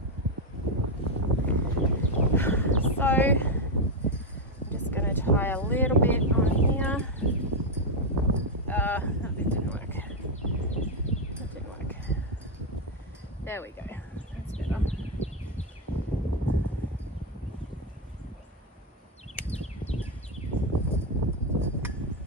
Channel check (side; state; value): both; normal; correlation 0.05